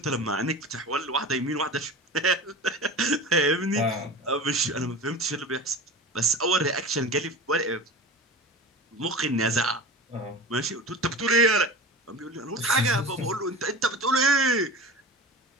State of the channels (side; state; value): both; normal; correlation 0.32